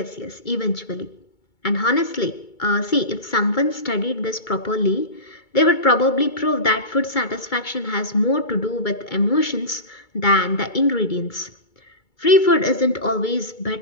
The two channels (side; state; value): right; late; 2.2 ms